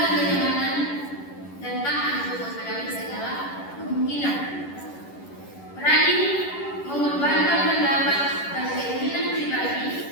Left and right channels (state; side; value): late; right; 11 ms